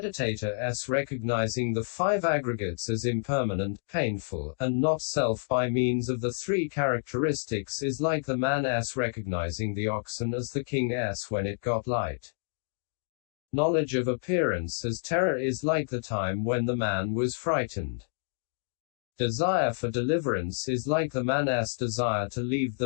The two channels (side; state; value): right; silent; digital silence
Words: as recognizing the 5 aggregates as impermanent, painful, and not self by means of the 3 characteristics is like the man as recognizing the oxen as the king as when it got light. Knowledge of appearance as terror is like the time when the man was frightened. Desire for deliverance is like the man's desire to leave